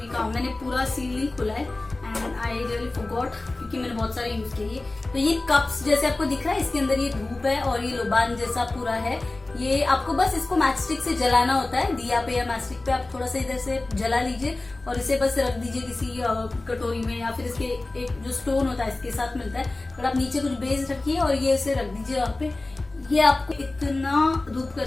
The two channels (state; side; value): quieter; right; 3.0 dB